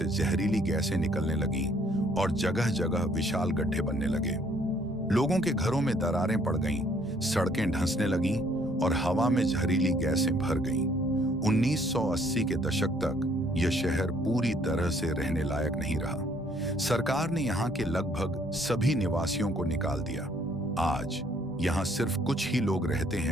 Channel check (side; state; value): both; normal; correlation 0.64